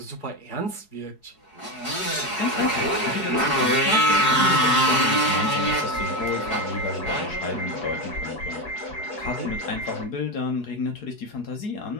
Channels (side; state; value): right; late; 4.7 ms